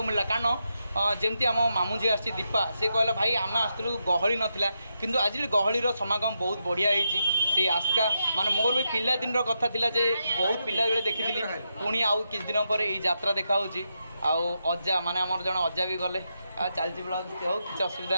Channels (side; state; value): both; inverted; correlation -0.85